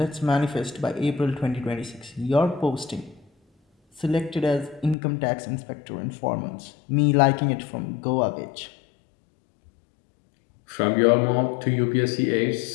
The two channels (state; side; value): drops out; right; at 5.0 s